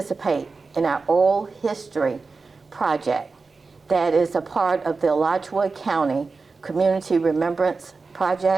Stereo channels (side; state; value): left; quieter; 4.2 dB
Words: in our oral history project that is a part of the Alachua County Community Remembrance